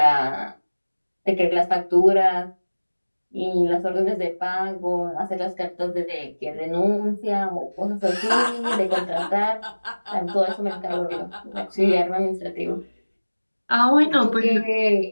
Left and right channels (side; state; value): both; inverted; correlation -1.00